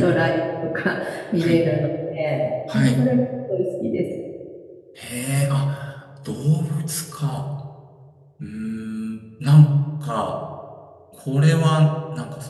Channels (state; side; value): identical; both; correlation 1.00